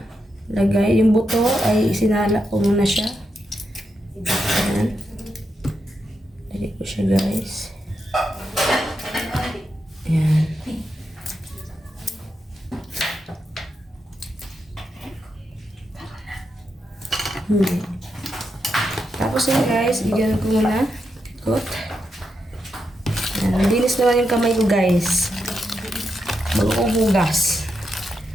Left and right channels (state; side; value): normal; both; correlation 0.84